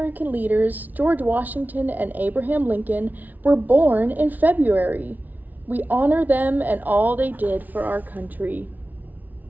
leaders, George Washington and Abraham Lincoln, were born in February. We honor them and all they did for our country.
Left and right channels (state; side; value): late; left; 0.079 ms